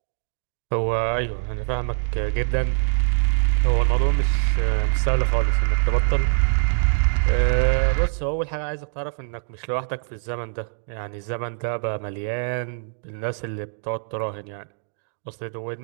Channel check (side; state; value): left; silent; digital silence